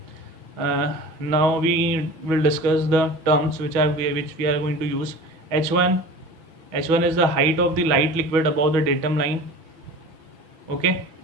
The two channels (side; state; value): left; late; 6.2 ms